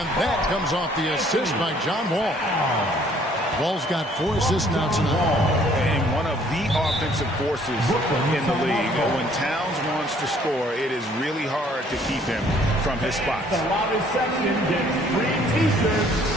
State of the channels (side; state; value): both; normal; correlation 0.60